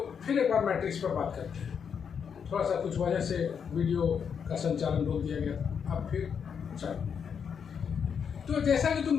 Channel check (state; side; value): quieter; right; 7.0 dB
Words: फिर एक बार मैट्रिक्स पर बात करते हैं। थोड़ा सा कुछ वजह से वीडियो का संचालन रोक दिया गया था, अब फिर चालू। तो जैसा कि